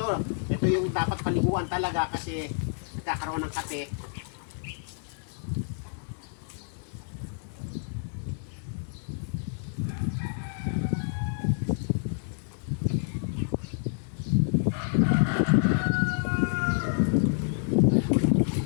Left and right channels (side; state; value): right; silent; digital silence